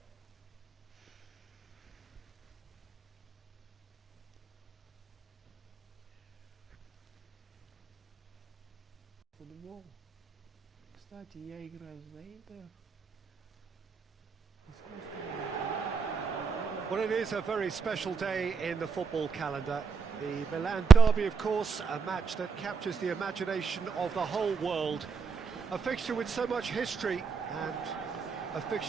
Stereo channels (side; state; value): left; quieter; 5.6 dB